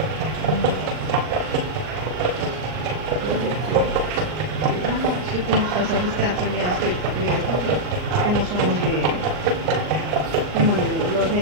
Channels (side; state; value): left; late; 39 ms